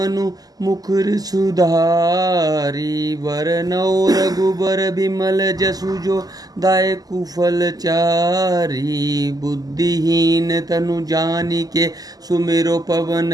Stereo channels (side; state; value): left; late; 0.18 ms